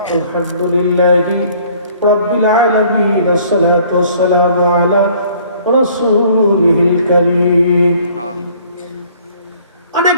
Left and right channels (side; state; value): both; inverted; correlation -0.57